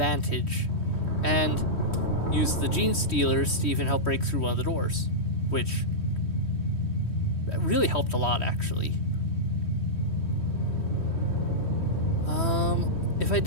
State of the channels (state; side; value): late; right; 3.1 ms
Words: and used the gene stealers to even help break through one of the doors, which really helped a lot, actually. If I